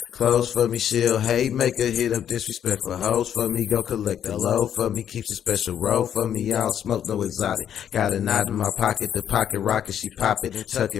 clothes for me. She'll hate maker, hit up disrespectful hoes for me. Go collect the low for me, keeps a special roll for me. I don't smoke no exotic. Got a knot in my pocket, the pocket rocket. She pop it and tuck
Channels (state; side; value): quieter; right; 9.4 dB